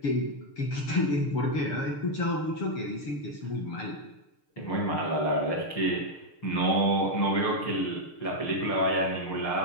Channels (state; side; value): late; right; 6.7 ms